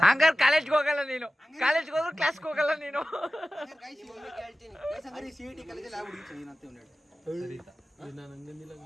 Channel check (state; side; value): normal; both; correlation 0.96